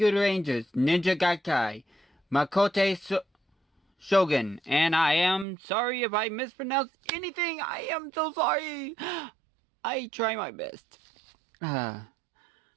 Rangers Ninja Gaikai Makote Shogun, and I am sorry if I mispronounced anything. I am so sorry. I try my best.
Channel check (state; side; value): drops out; left; at 5.5 s